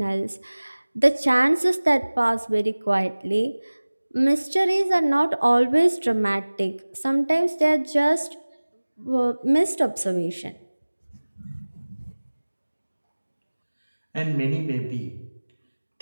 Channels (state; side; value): inverted; both; correlation -1.00